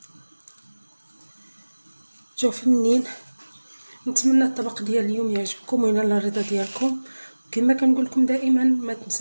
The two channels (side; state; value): both; inverted; correlation -1.00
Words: جاو فنين. نتمنى الطبق ديال اليوم يعجبكم وينال الرضا ديالكم. كما كنقول لكم دائما ما